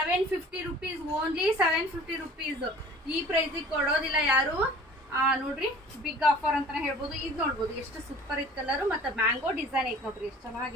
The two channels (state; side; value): normal; both; correlation 0.46